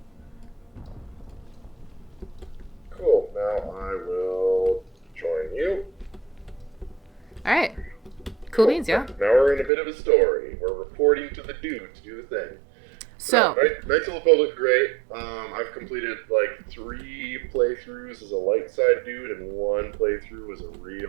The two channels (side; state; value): left; drops out; at 9.7 s